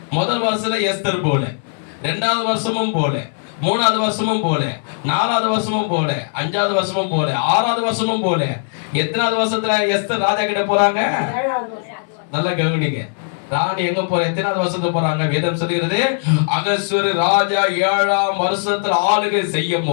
முதல் வருஷத்துல எஸ்தர் போல, 2வது வருஷமும் போல, 3வது வருஷமும் போல, 4வது வருஷமும் போல, 5வது வருஷமும் போல, 6வது வருஷமும் போல. எத்தனாவது வருஷத்துல எஸ்தர் ராஜா கிட்ட போறாங்க? நல்லா கவனிங்க. ராணி எங்க போற? எத்தனாவது வருஷத்துக்கு போறாங்க? வேதம் சொல்லுகிறது, அகஸ்வர ராஜா 7ஆம் வருஷத்துல ஆளுகை செய்யும்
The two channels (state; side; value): silent; right; digital silence